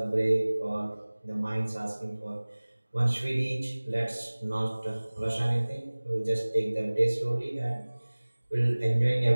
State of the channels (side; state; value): both; inverted; correlation -1.00